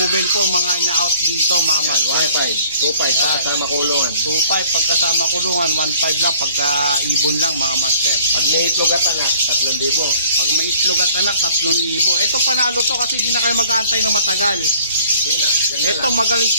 po mga na-out dito, mga master. 1.5. 2.5 kasama kulungan. 2.5 pagkasama kulungan, 1.5 lang pagka ibon lang, mga master. Pag may itlog at anak, 3,000. Pag may itlog at anak, 3,000. Ito panalo to kasi hindi na kayo mag-aantay ng matagal. Hindi na. Yan na Ito lang. magaling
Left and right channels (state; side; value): inverted; both; correlation -0.56